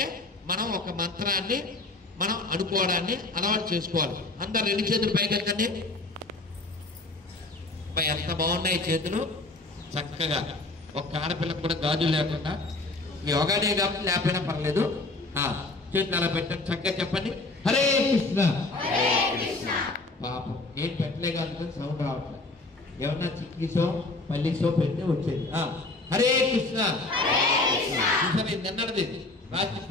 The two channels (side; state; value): right; quieter; 3.2 dB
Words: మనం ఒక మంత్రాన్ని మనం అనుకోవడాన్ని అలవాటు చేసుకోవాలి. అందరు 2 చేతులు పైకెత్తండి. ఎంత బాగున్నాయి చేతులు చక్కగా. ఒక ఆడపిల్లకు కూడా గాజులు లేకుండా, యోగా డే కాబట్టి లేకపోయినా పర్లేదు, చేతులు అలా పెట్టండి. చక్కగా చెప్పండి, హరే కృష్ణ. పాపం నేను పెట్టలే కానీ సౌండ్ రావట్లేదు. ఏమన్నా చిక్కీసో పల్లీసో పెడితే వచ్చేది. హరే కృష్ణ. నిన్నది రాత్రి